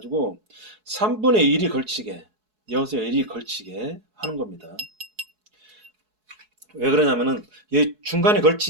3분의 1이 걸치게, 여기서 1이 걸치게 하는 겁니다. 왜 그러냐면은 이 중간에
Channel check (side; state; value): left; late; 4.7 ms